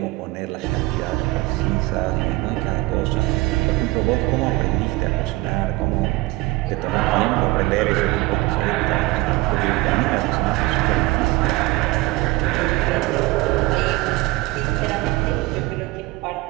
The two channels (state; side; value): quieter; left; 20.3 dB